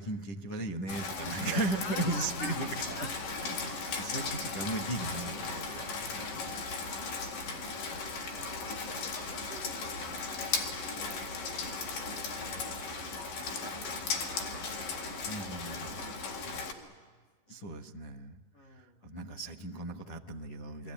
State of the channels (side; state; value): right; late; 11 ms